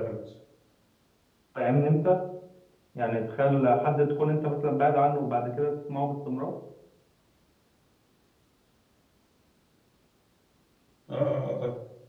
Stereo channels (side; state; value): both; identical; correlation 1.00